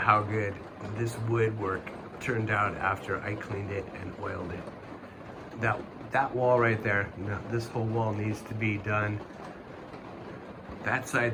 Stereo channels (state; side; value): identical; both; correlation 1.00